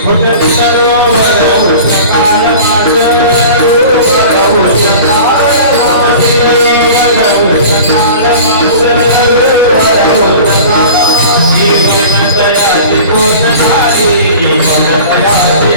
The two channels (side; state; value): both; inverted; correlation -0.39